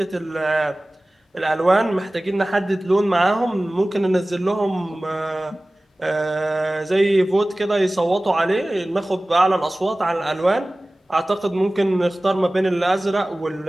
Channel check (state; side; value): normal; both; correlation 0.98